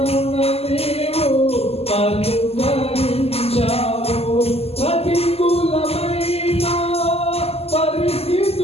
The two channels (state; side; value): late; right; 0.29 ms